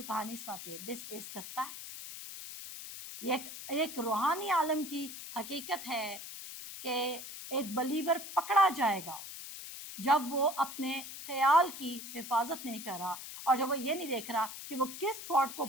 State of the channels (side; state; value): left; noise; hiss, 10 dB below the sound